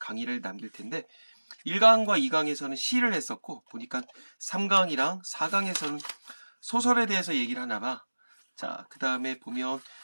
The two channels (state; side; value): inverted; both; correlation -1.00